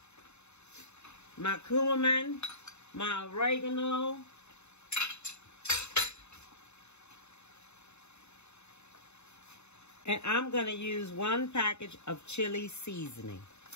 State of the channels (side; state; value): right; late; 0.81 ms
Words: my cumin, my oregano, and I'm going to use 1 package of chili seasoning,